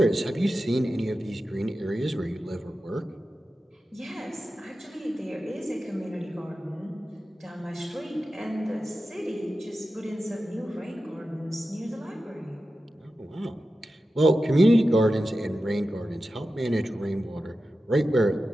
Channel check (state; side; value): normal; both; correlation 0.93